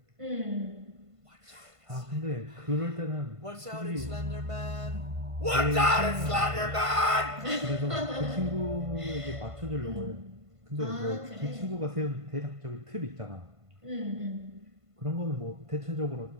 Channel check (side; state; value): left; late; 1.5 ms